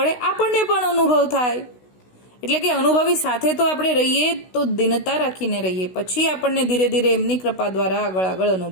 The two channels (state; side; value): late; right; 16 ms